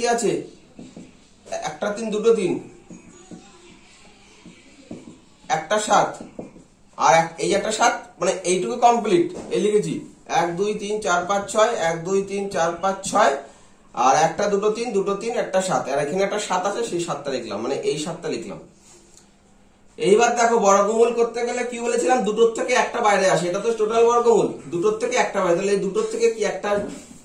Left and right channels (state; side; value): identical; both; correlation 1.00